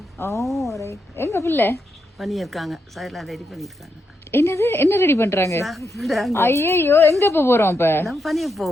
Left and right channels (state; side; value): normal; both; correlation 0.82